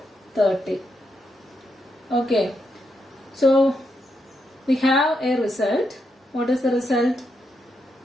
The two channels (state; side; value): normal; both; correlation 0.82